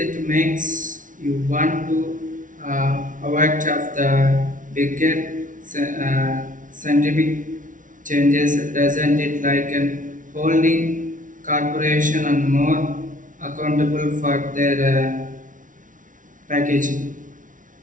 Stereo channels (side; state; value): left; late; 0.38 ms